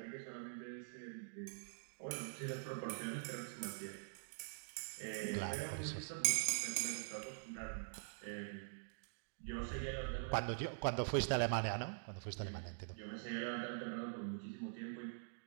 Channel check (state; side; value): silent; left; digital silence